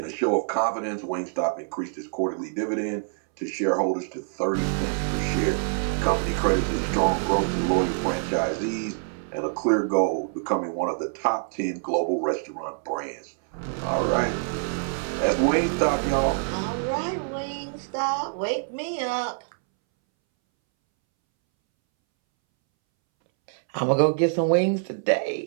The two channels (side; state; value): left; silent; 61 dB below the other